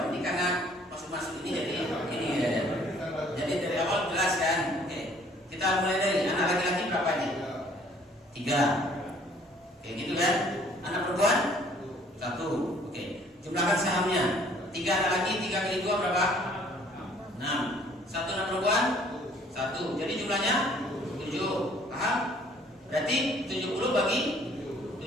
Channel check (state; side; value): normal; both; correlation 0.58